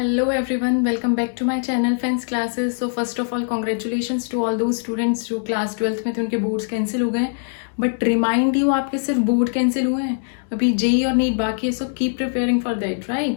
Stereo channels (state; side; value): silent; right; digital silence